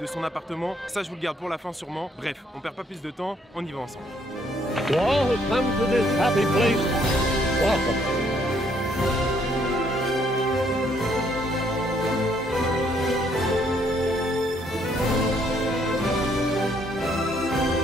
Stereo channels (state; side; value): normal; both; correlation 0.68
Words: son appartement. Ça je vous le garde pour la fin sûrement. Bref, on perd pas plus de temps, on y va ensemble. To all who come to this happy place, welcome.